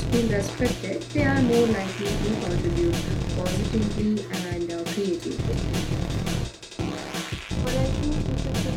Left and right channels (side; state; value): both; identical; correlation 1.00